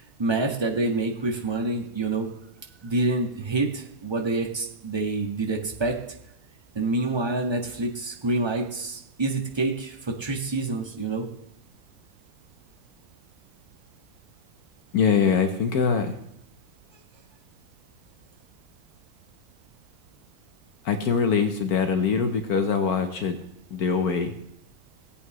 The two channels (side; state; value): left; late; 1.3 ms